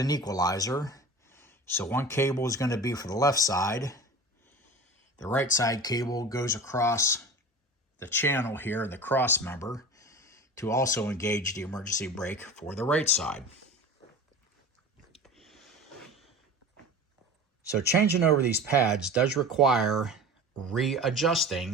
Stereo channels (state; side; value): normal; both; correlation 0.35